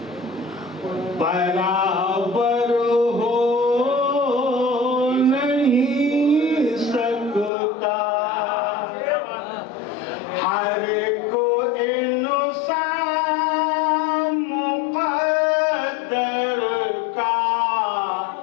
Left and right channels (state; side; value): drops out; right; at 7.5 s